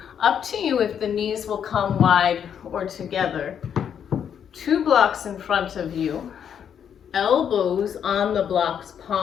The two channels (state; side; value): quieter; right; 8.3 dB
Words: Up to you if the knees will come wide or together. 2 blocks in front of you. Elbows on the blocks,